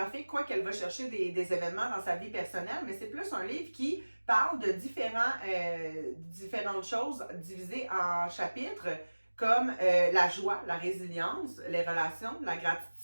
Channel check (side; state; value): both; inverted; correlation -1.00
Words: quoi qu'elle va chercher des événements dans sa vie personnelle, mais c'est plus un livre qui parle de différentes choses divisées en chapitres, comme la joie, la résilience, les relations, la